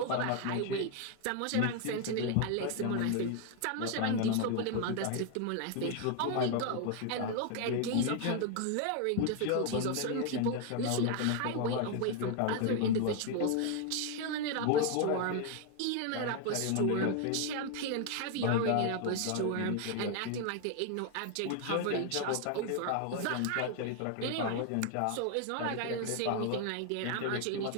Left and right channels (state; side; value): different; both; correlation 0.01